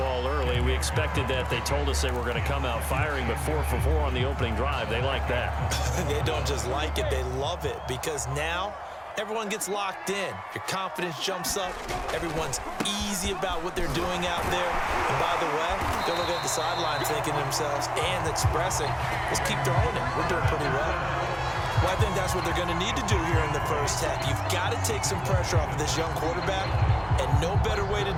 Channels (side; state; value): both; identical; correlation 1.00